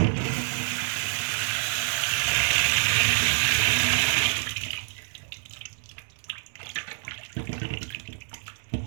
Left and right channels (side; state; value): left; silent; digital silence